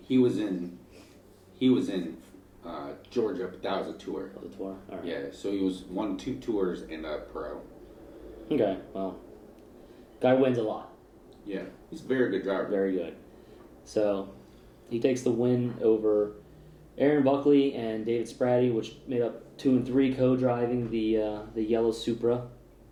was in Georgia, but that was a tour. That was a tour? All right. Yeah, so he won 2 tours and a pro. Okay, well. Guy wins a lot. Yeah, he's a very good driver. Very good. So he takes the win over Aaron Buckley and David Spratty, which made up 2 and 3 co-driving the yellow Supra.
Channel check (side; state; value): both; identical; correlation 1.00